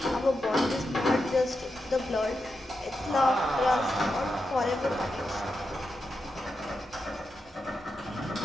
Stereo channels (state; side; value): normal; both; correlation 0.87